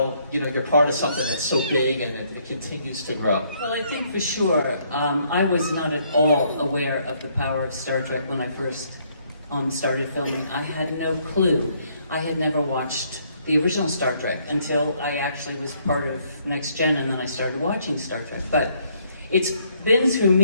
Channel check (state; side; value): inverted; both; correlation -0.68